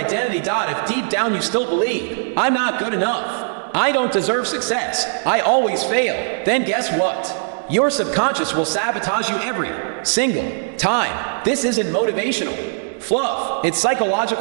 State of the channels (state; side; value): silent; left; digital silence